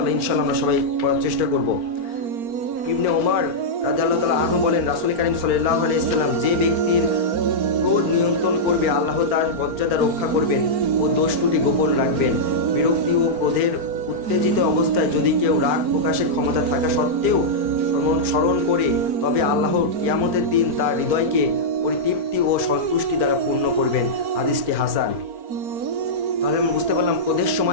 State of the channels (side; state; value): left; late; 4.4 ms